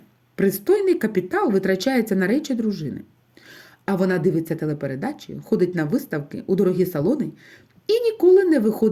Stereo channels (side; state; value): both; identical; correlation 1.00